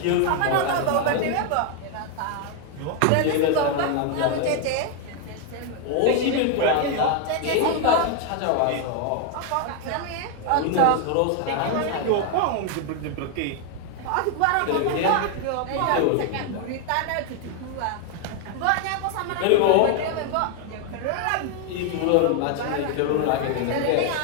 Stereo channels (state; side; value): different; both; correlation 0.00